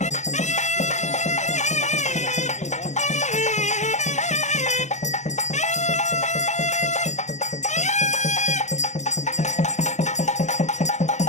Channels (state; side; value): late; right; 0.34 ms